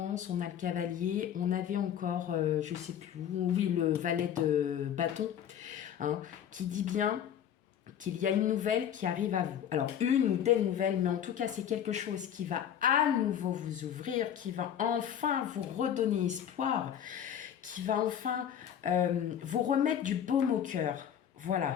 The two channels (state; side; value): quieter; right; 9.4 dB